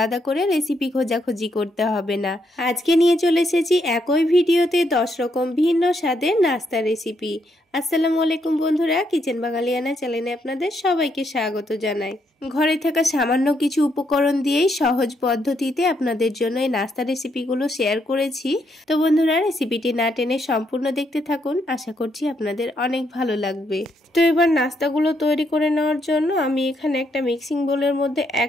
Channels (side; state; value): both; normal; correlation 0.76